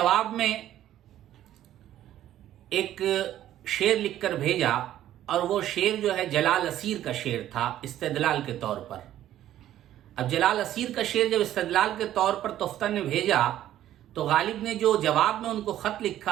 میں ایک شعر لکھ کر بھیجا، اور وہ شعر جو ہے جلال اسیر کا شعر تھا استدلال کے طور پر۔ اب جلال اسیر کا شعر جب استدلال کے طور پر تفتہ نے بھیجا تو غالب نے جو جواب میں ان کو خط لکھا،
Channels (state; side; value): quieter; left; 12.4 dB